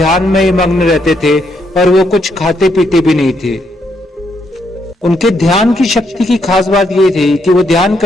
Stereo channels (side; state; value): both; normal; correlation 0.76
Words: में मग्न रहते थे और वो कुछ खाते पीते भी नहीं थे। उनके ध्यान की शक्ति की खास बात ये थी कि वो ध्यान